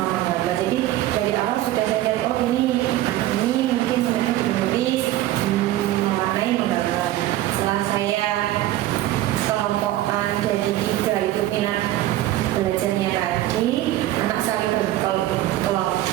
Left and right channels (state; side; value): quieter; left; 14.6 dB